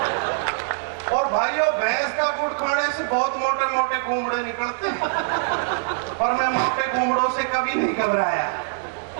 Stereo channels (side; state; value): left; silent; digital silence